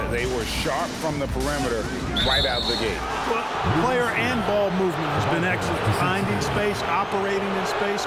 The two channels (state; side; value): identical; both; correlation 1.00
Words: They were sharp from the perimeter right out of the gate. Well, player and ball movement has been excellent. Finding space, operating in space,